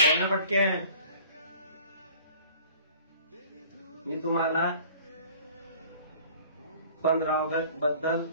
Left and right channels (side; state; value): both; inverted; correlation -0.50